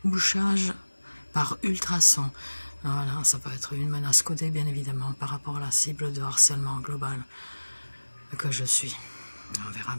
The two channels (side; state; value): both; inverted; correlation -1.00